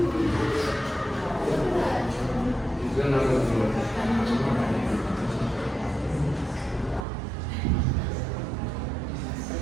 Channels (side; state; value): left; drops out; at 7.1 s